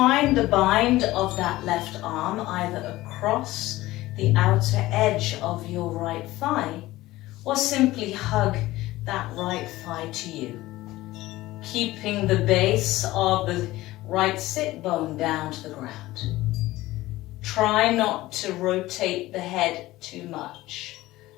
the bind of that left arm either across the outer edge of your right thigh or simply hug that right thigh to you, keeping the base of the right sit bone down to the ground. Try not to rotate the head too much.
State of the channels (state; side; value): quieter; right; 17.5 dB